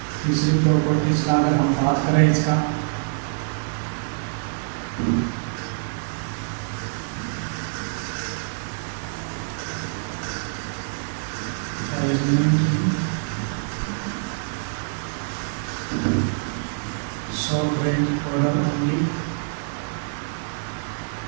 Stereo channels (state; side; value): silent; left; 62 dB below the other